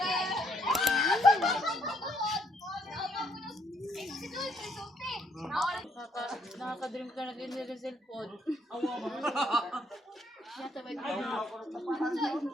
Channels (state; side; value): normal; both; correlation 0.71